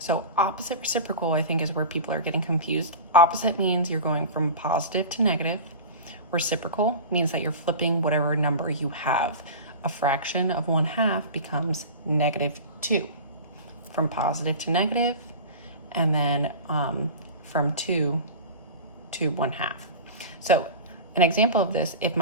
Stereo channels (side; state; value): both; inverted; correlation -0.32